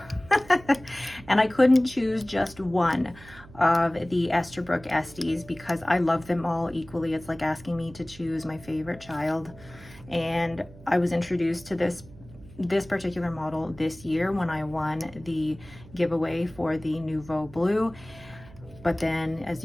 And I couldn't choose just one of the ESTHERBROOK Esties because I love them all equally. It's like asking me to choose my favorite child. And I was introduced to this particular model this year when I won the giveaway for the Nouveau Blue. But then, as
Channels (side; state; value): right; noise; hum, 20 dB below the sound